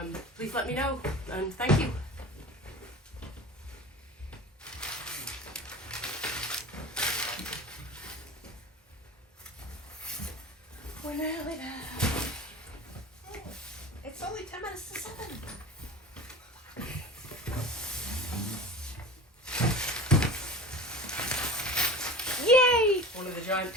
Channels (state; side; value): normal; both; correlation 0.36